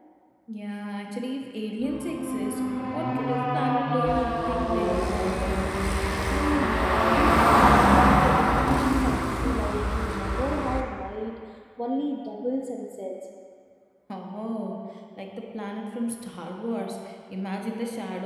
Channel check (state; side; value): identical; both; correlation 1.00